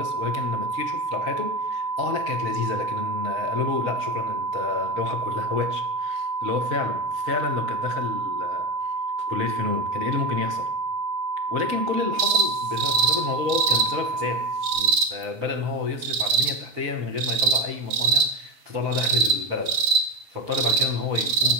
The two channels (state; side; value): late; left; 5.6 ms